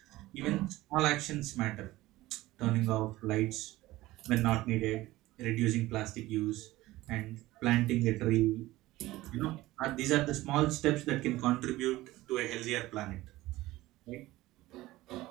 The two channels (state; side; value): quieter; left; 17.6 dB